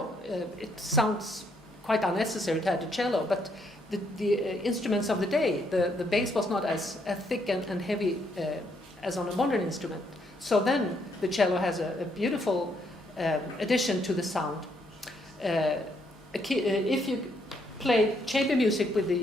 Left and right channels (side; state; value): both; normal; correlation 0.73